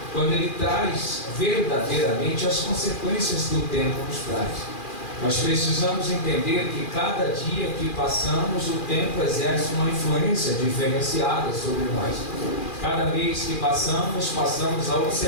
quando ele traz verdadeiramente as consequências que o tempo nos traz. Nós precisamos entender que cada dia que passamos, o tempo exerce uma influência diferenciada sobre nós. Cada mês que passamos a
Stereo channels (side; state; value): right; late; 2.4 ms